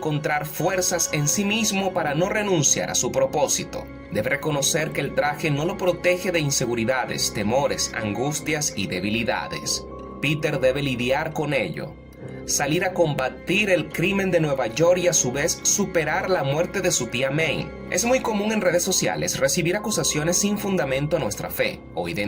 fuerzas en sí mismo para no renunciar a su propósito. Debe reconocer que el traje no lo protege de inseguridades, temores, angustias y debilidades. Peter debe lidiar con ello, salir a combatir el crimen de Nueva York y a su vez superar la muerte de su tía May. Es muy común en redes sociales recibir acusaciones sin fundamento a nuestra fe o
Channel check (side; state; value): both; identical; correlation 1.00